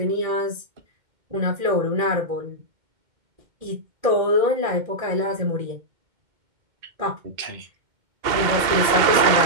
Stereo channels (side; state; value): left; late; 2.1 ms